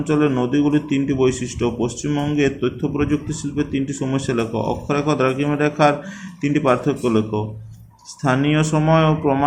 নদীগুলির 3টি বৈশিষ্ট্য। পশ্চিমবঙ্গের তথ্য প্রযুক্তি শিল্পের 3টি সমস্যা লেখো। অক্ষরেখা ও দ্রাঘিমা রেখার 3টি পার্থক্য লেখো। স্থানীয় সময় ও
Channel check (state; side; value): identical; both; correlation 1.00